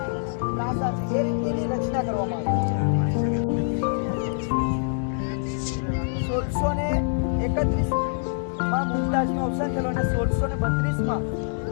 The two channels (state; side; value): silent; right; digital silence